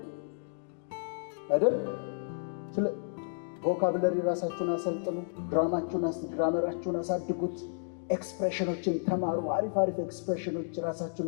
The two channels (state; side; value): silent; right; digital silence